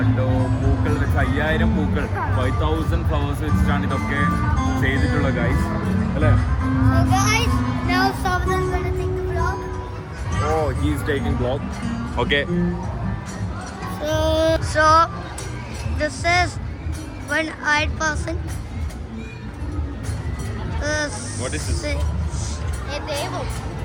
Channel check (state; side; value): identical; both; correlation 1.00